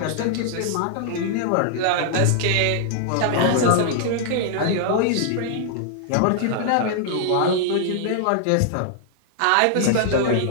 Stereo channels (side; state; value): both; different; correlation -0.01